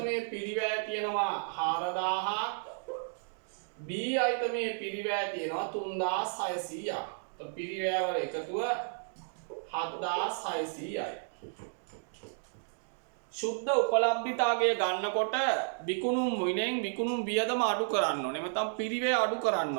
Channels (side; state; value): left; silent; digital silence